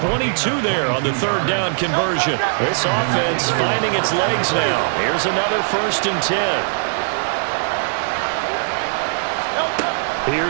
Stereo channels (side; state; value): left; silent; digital silence